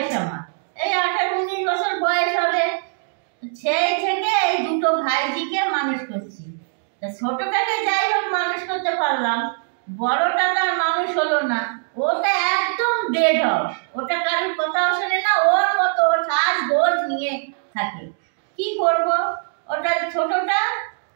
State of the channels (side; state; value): left; silent; digital silence